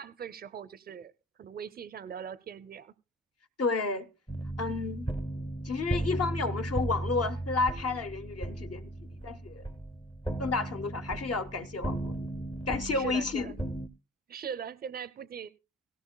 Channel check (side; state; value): both; normal; correlation 0.46